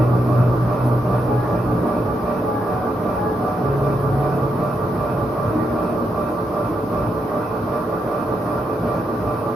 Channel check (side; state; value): both; normal; correlation 0.81